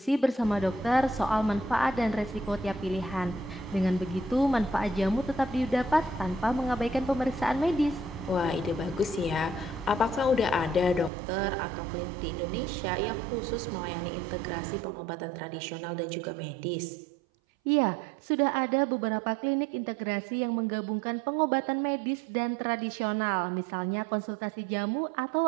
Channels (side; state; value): left; drops out; at 11.1 s